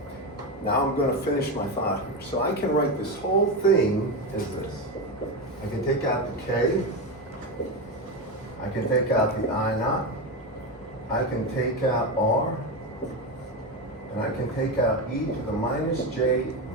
Now I'm going to finish my thought here. So I can write this whole thing as this. I can take out the K. I can take out the I naught. I can take out R. And I can take out e to the minus j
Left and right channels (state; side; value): normal; both; correlation 0.15